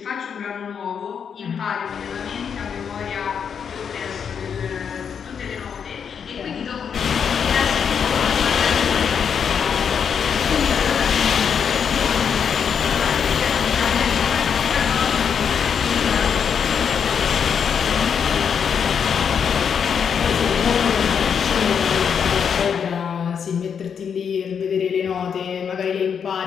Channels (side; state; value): right; quieter; 7.2 dB